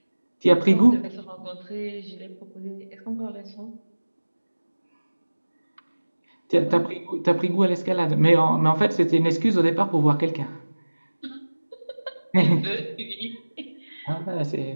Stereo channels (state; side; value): inverted; both; correlation -1.00